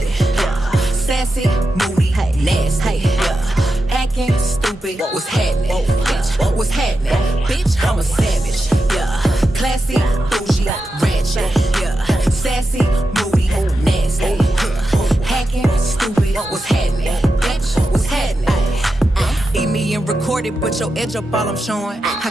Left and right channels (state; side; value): normal; both; correlation 0.89